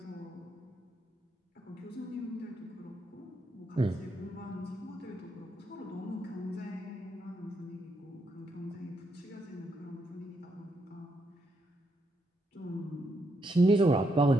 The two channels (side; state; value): both; normal; correlation 0.79